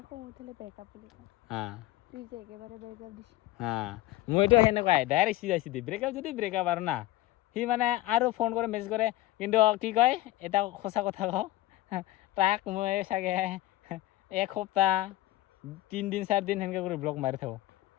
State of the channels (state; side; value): quieter; right; 16.9 dB